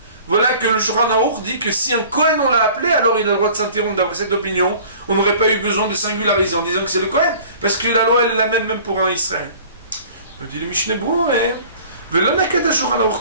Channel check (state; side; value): inverted; both; correlation -0.47